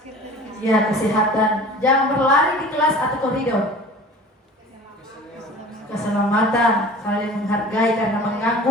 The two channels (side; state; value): both; normal; correlation 0.42